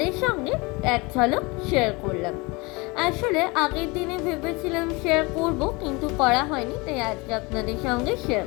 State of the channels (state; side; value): quieter; right; 26.0 dB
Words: সঙ্গে এক ঝলক শেয়ার করলাম। আসলে আগের দিনে ভেবেছিলাম শেয়ার করব, কিন্তু করা হয়নি, তাই আজকে আপনাদের সঙ্গে শেয়ার